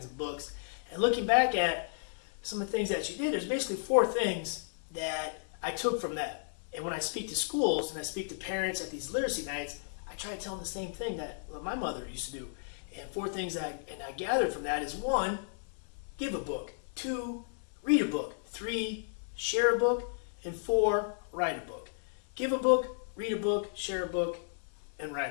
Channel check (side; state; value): right; silent; 55 dB below the other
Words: of books. And looking back at some of the things that she did, there's basically 4 things that I took from that. And when I speak to schools and I speak to parents at these literacy nights, I try to tell them the same thing that my mother used to do. And 4 things I gathered from that is 1, give a book. 2, read a book. 3, share a book. And 4, write a book. Give a book, read a book, share a book, and